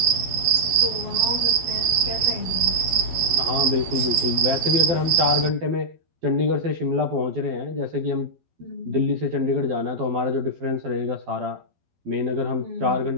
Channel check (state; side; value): late; left; 12 ms